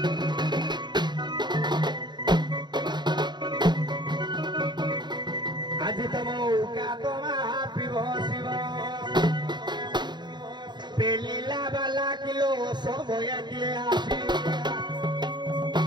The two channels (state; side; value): late; left; 0.21 ms